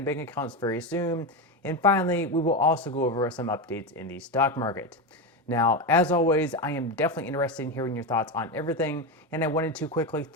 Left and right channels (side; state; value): both; normal; correlation 0.15